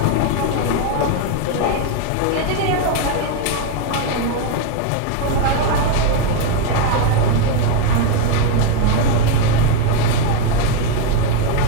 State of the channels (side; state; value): both; different; correlation 0.01